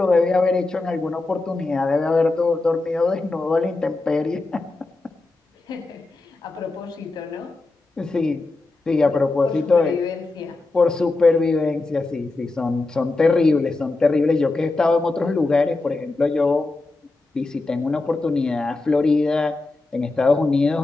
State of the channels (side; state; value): right; quieter; 3.3 dB